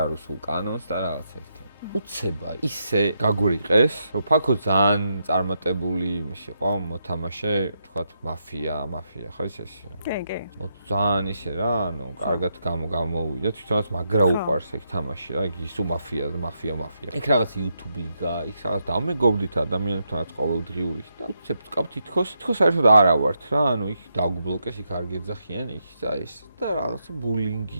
არის სულ კანონს და რაღაცა ერთი. უცება ისე გაგვრიყეს, რომ ფაქო ძალიან წარმატებული იყო მოთამაშე, თქვათ მაფია ხო ის ეს. კი. ძალიან ისე რა, ანუ კარგად გამოვიდა, თვითონაც მაგრა უყარს ეგ თამაში რა, ისო მაფია. იქ რაღაც YouTube-ი გა, იქ რაღაც დამეგობრდით ადამიანებთანაც ყოველდღიური და უცებ ვკავ თითქოს საერთოდ არა ვართ რა, ანუ იქ დაგბლოკეს, იქ არ გეძახიან, იქ და ეს და რაღაცა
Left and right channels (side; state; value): both; inverted; correlation -0.81